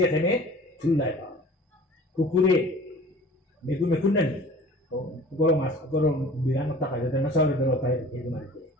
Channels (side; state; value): both; normal; correlation 0.45